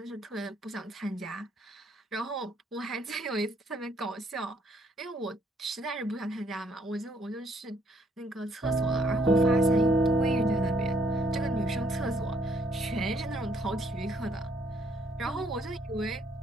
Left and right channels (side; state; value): both; normal; correlation 0.67